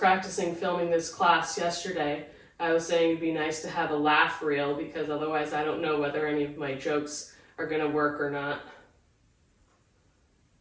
filming this class yesterday, I was saying it'd be nice to have a laugh reel, because otherwise I don't know whether any of my jokes are going to work or not.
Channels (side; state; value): both; identical; correlation 1.00